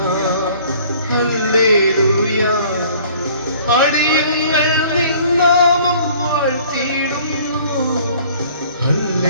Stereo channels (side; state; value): both; inverted; correlation -0.53